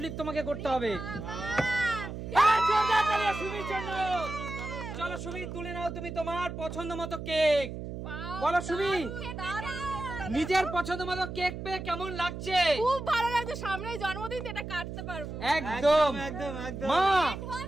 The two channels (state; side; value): noise; right; hum, 8 dB below the sound